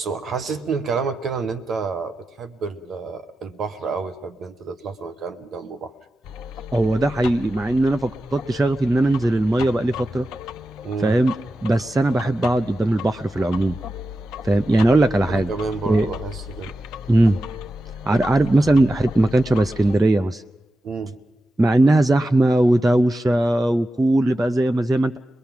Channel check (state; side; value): normal; both; correlation 0.92